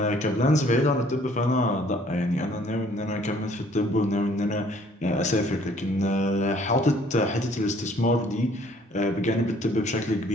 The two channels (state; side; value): normal; both; correlation 0.59